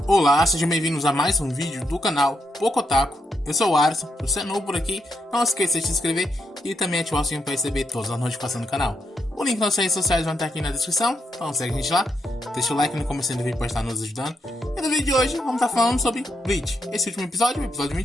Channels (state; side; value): normal; both; correlation 0.81